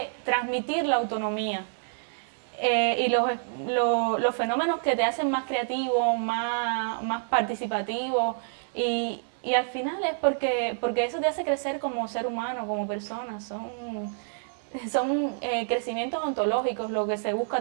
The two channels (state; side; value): silent; left; digital silence